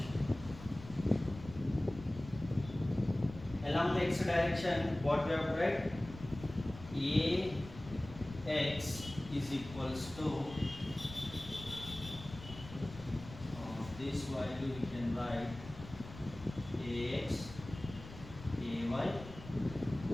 Along the x direction, what we have to write? Ax is equals to this value we can write Ax, Ay,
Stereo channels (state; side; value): noise; left; rumble, 14 dB below the sound